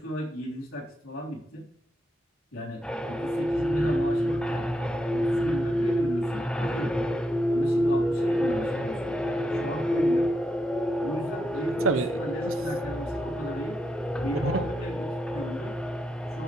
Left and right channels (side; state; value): both; normal; correlation 0.83